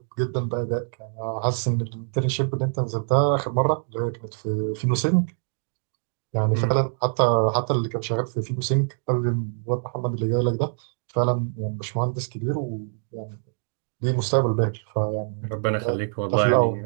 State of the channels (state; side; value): silent; left; digital silence